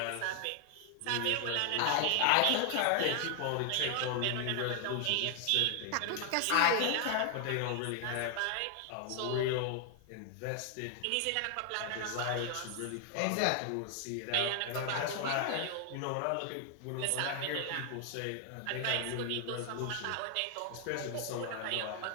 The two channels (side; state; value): both; different; correlation 0.00